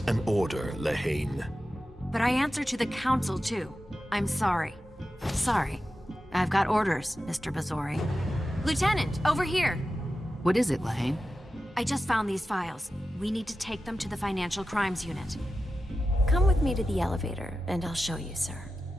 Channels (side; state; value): both; normal; correlation 0.93